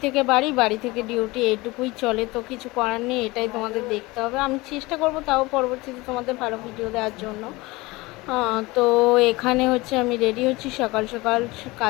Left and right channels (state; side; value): quieter; right; 22.0 dB